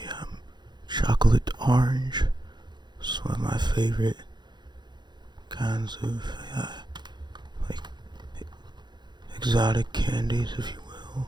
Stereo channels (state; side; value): late; left; 0.21 ms